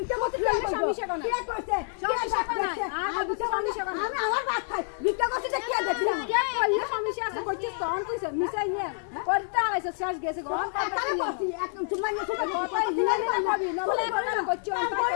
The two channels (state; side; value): silent; right; 59 dB below the other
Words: করতে সমস্যা কোন কে করতে সমস্যা কোন আমি আমার ভাত খাই ভিক্ষা করতে কে দেখছিলাম কে কইলে সমস্যা আছে করছিস তো অন কইছ মিশাই নিয়ে করতে আইছ শেষ গেছে গো কথা করছি একদম তোমার নিয়ে সুতা কথা হিলা না ভাবি না বলে করছি অন